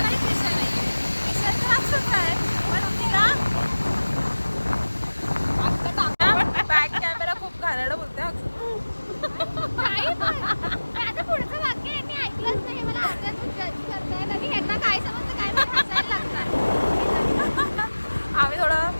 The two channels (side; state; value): both; inverted; correlation -1.00